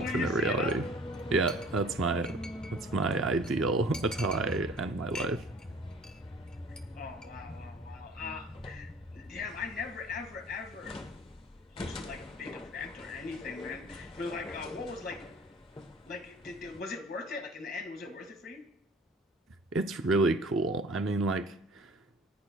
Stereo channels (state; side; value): normal; both; correlation 0.48